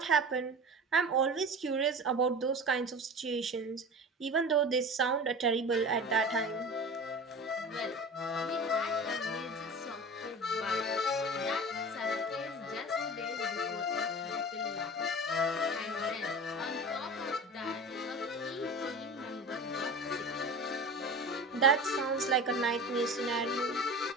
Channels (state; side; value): normal; both; correlation 0.34